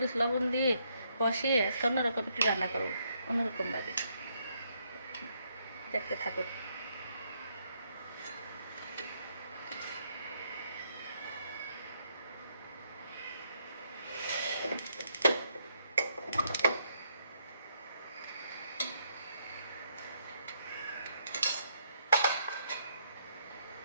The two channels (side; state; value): both; inverted; correlation -0.74